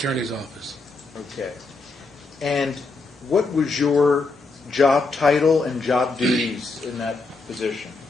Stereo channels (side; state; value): right; quieter; 3.7 dB